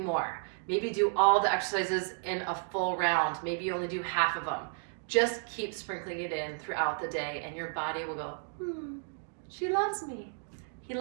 Maybe do all the exercises in a full round. Maybe you only do half of them. Just keep sprinkling it in throughout the day and your body will go, she loves me. He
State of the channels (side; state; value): left; silent; 56 dB below the other